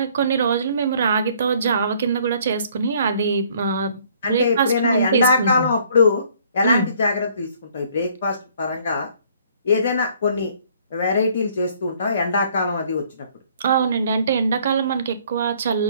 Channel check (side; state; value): both; inverted; correlation -0.60